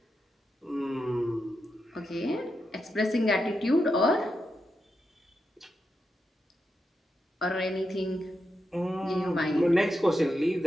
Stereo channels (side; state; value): both; normal; correlation 0.86